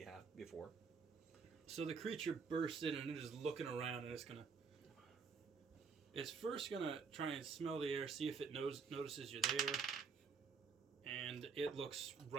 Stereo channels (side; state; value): left; quieter; 5.4 dB